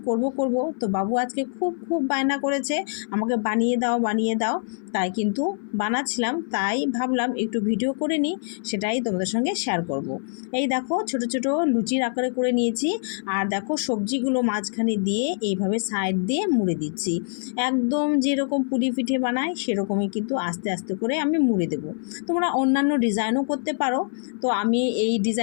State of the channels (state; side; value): silent; right; 58 dB below the other